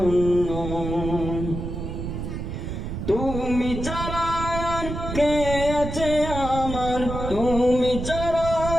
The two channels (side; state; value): right; noise; rumble, 5 dB below the sound